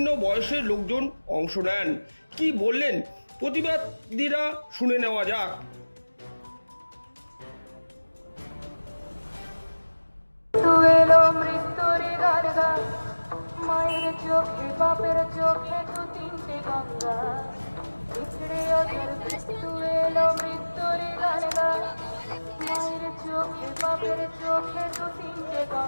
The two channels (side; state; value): both; inverted; correlation -1.00